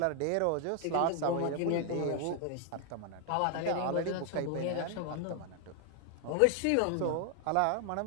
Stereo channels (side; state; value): both; different; correlation 0.00